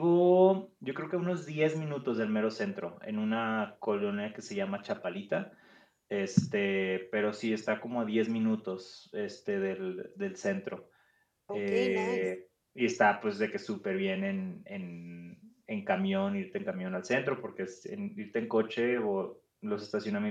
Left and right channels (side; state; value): both; identical; correlation 1.00